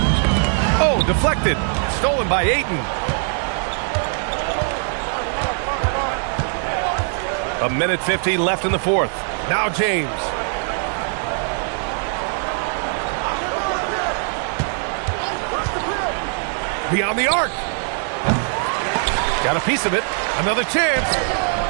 Oh, deflected. Stolen by Ayton. A minute 50 left in the fourth. Now James. Beyond the arc. Got a piece of it. Another chance.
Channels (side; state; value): left; silent; 56 dB below the other